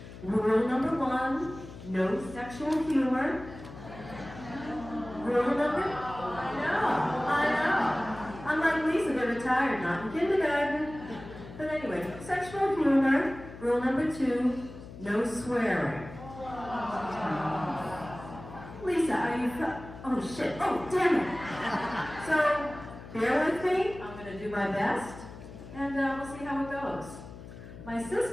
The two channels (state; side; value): noise; left; hum, 14 dB below the sound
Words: Rule number 1, no sexual humor. Rule number, I know. Unlike Lisa, they're retired, not in kindergarten. But anyway, sexual humor. Rule number 2, no swearing. Lisa, are you, oh shit, oh damn it. So, bear with me, I'm gonna do my best, and we'll see how it goes. My